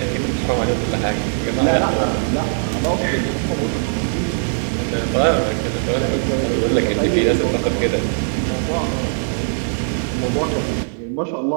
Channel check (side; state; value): left; silent; 61 dB below the other